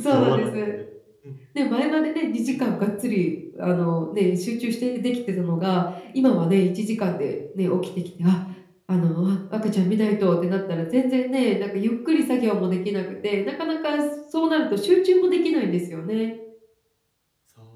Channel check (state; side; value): identical; both; correlation 1.00